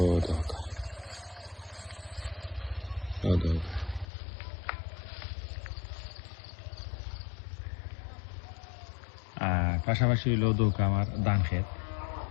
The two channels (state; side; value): drops out; right; at 4.0 s